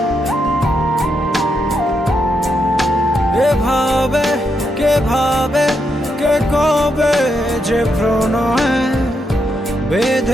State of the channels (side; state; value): both; normal; correlation 0.81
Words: এভাবে কে ভাবে কে কবে যে প্রণয়ে